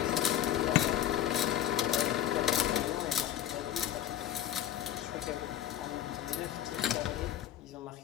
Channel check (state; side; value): quieter; right; 11.3 dB